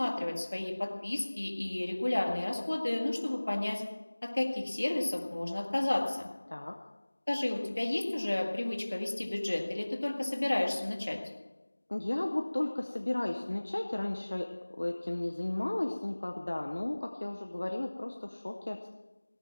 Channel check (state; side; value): inverted; both; correlation -1.00